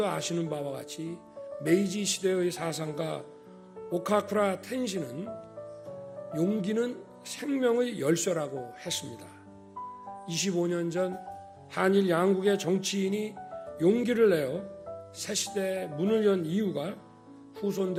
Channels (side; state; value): both; identical; correlation 1.00